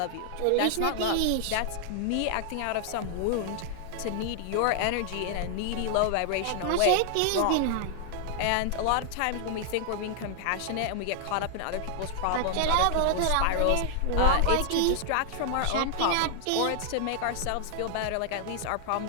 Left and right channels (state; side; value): different; both; correlation 0.00